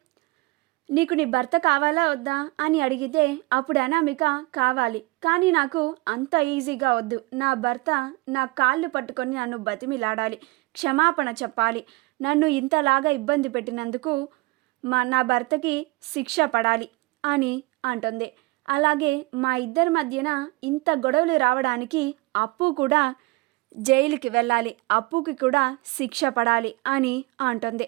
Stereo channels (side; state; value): left; quieter; 23.7 dB